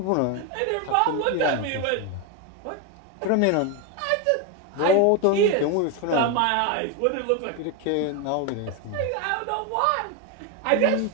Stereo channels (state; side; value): different; both; correlation 0.02